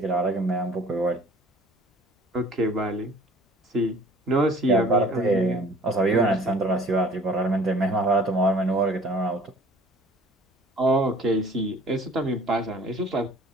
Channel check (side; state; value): both; normal; correlation 0.51